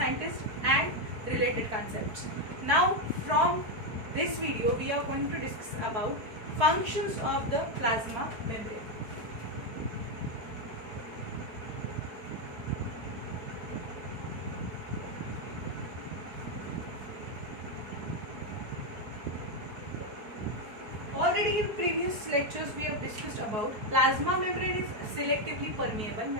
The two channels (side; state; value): left; late; 4.7 ms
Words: and related concepts. Now from this video we are going to discuss about functions of the plasma membrane. Already in previous lectures we have discussed about plasma membrane is selectively permeable